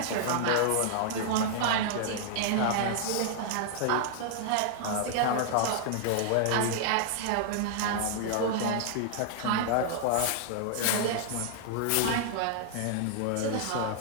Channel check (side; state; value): both; different; correlation -0.01